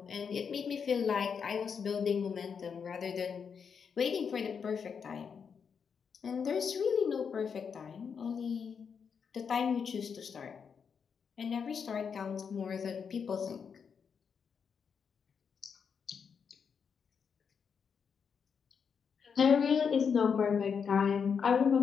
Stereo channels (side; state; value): right; quieter; 6.5 dB